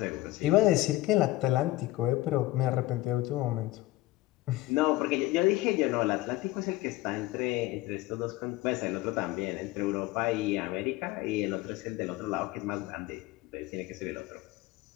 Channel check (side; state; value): right; quieter; 17.8 dB